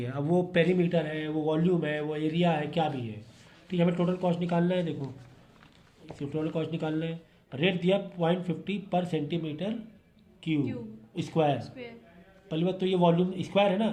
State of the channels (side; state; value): both; identical; correlation 1.00